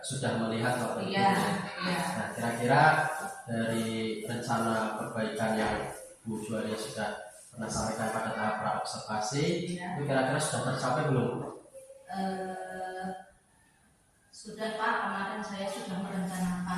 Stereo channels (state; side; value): identical; both; correlation 1.00